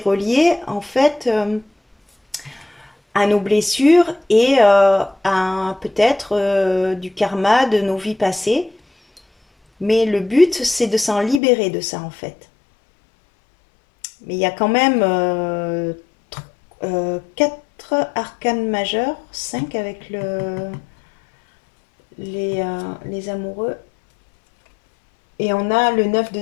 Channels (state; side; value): drops out; right; at 11.4 s